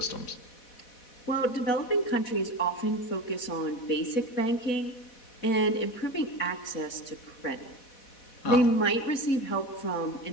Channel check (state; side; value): late; right; 4.1 ms